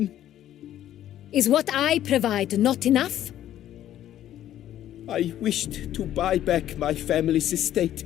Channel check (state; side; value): quieter; right; 12.0 dB